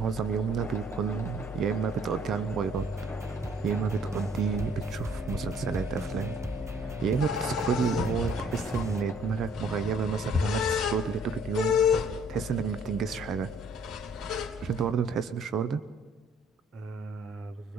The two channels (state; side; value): normal; both; correlation 0.60